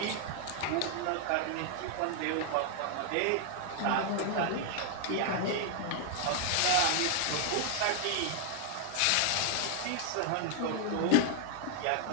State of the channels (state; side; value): different; both; correlation 0.00